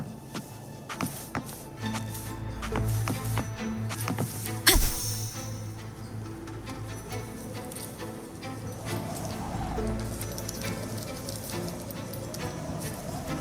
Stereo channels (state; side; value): identical; both; correlation 1.00